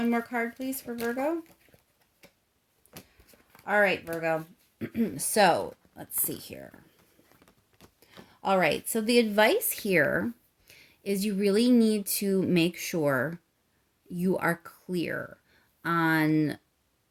more card, please, for Virgo. All right, Virgo. So, let's see here. All right, so the advice here is you really need to make sure you are clear on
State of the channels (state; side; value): identical; both; correlation 1.00